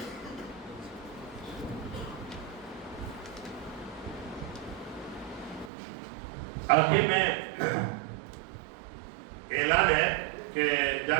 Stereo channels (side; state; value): left; drops out; at 5.7 s